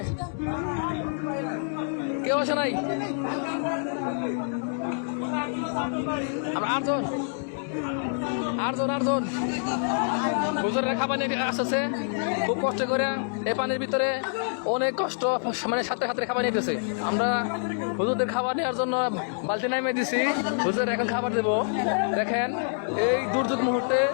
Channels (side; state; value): right; silent; digital silence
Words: কেউ আসে নাই? আমরা আটজন হুজুরেরা খাবার নিয়ে আসতেছে খুব কষ্ট করে। এই পানির ভিতরে অনেক কষ্ট, মানে সাথে সাথে খাবার নিতেছে। আমরা হুজুরদের খাবার নেওয়ার জন্য বালতি নামিয়ে দিছি। হুজুর এখন খাবার দেবো। দেখেন এই দুর্যোগ মুহূর্তে